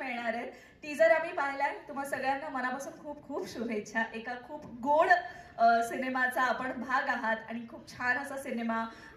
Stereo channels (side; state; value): both; identical; correlation 1.00